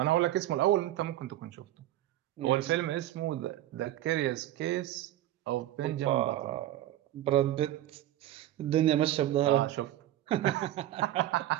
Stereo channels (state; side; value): quieter; left; 13.8 dB